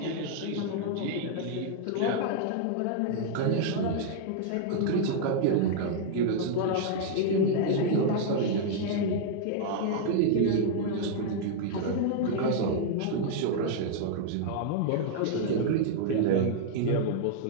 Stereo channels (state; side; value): different; both; correlation -0.01